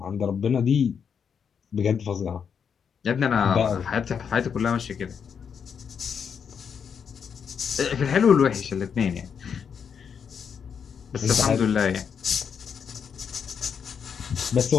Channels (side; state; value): right; quieter; 7.0 dB